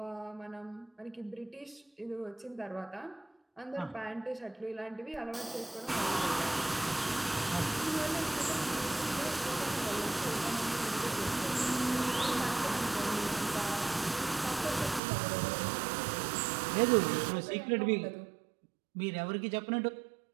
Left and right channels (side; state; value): left; drops out; at 15.0 s